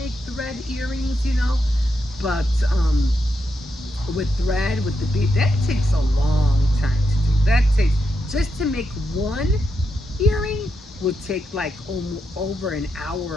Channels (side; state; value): both; normal; correlation 0.84